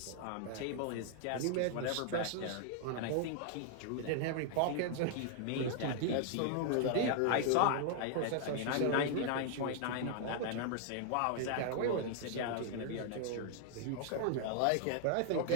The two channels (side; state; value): both; different; correlation 0.00